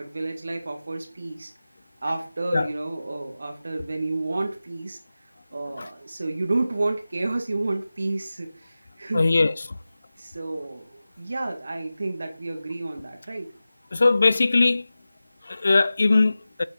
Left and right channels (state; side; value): inverted; both; correlation -0.96